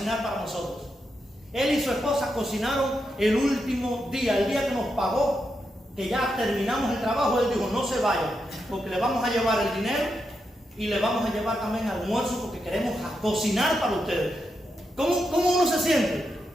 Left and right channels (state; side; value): normal; both; correlation 0.85